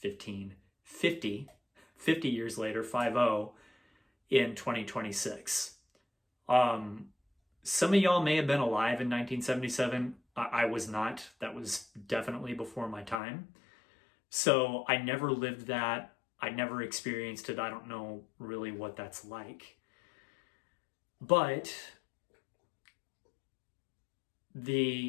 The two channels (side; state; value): right; drops out; at 13.2 s